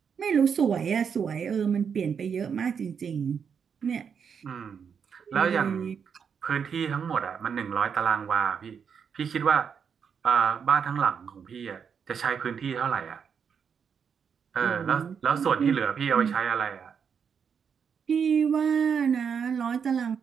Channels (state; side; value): quieter; left; 6.9 dB